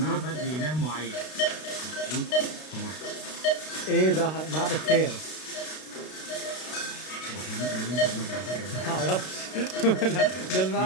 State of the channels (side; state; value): right; late; 32 ms